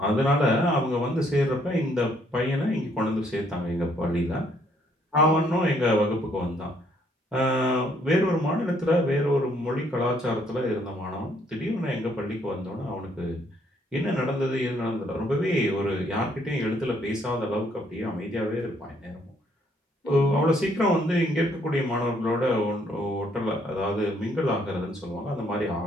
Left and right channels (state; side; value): normal; both; correlation 0.68